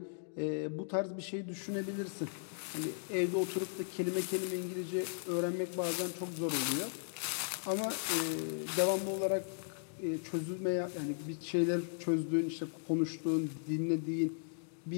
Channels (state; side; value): silent; right; digital silence